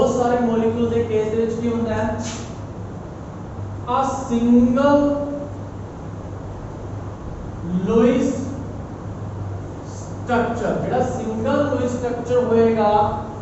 सारे मॉलिक्यूल के केस दे विच की होंदा है, a single लुईस स्ट्रक्चर, जेड़ा सिंगल लुईस स्ट्रक्चर होएगा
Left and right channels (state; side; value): identical; both; correlation 1.00